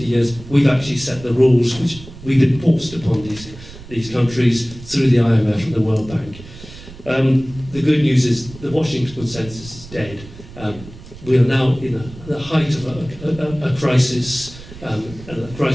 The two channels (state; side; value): noise; right; rumble, 17 dB below the sound